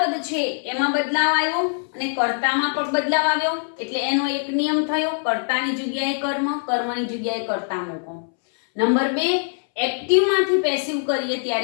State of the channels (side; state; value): right; silent; 64 dB below the other